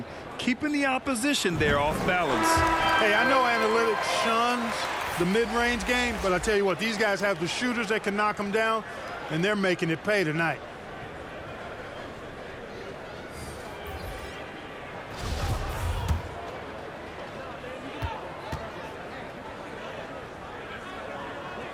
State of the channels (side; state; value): both; identical; correlation 1.00